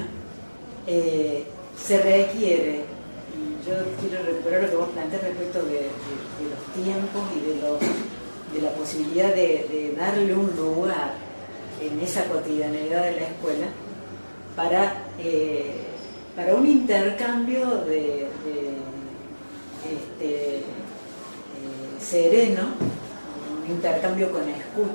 se requiere, y yo quiero recuperar lo que vos planteás respecto de los tiempos y de la posibilidad de darle un lugar en esa cotidianeidad de la escuela para un intercambio sereno, un intercambio con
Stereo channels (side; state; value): both; inverted; correlation -1.00